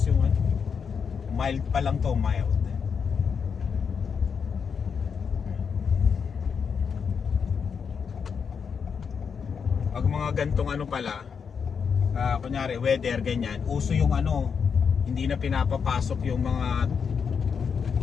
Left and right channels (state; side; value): quieter; right; 6.3 dB